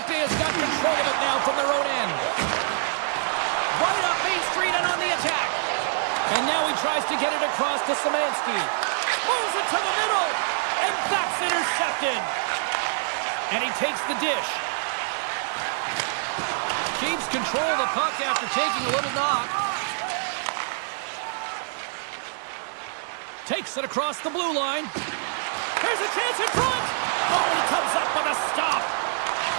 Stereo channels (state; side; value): silent; left; digital silence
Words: got control of it now from their own end. Right up Main Street and on the attack. And now he tries to get it across to Szymanski. Moves it to the middle. And that's intercepted. And he takes the dish. Keeps control of the puck after taking a little knock. Takes it across the blue line. Here's a chance in front. Oh, he comes up with a stop.